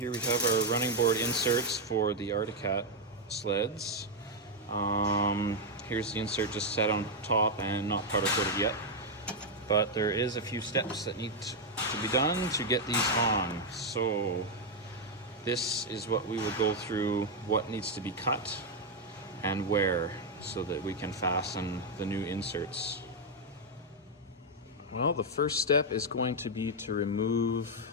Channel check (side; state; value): both; normal; correlation 0.01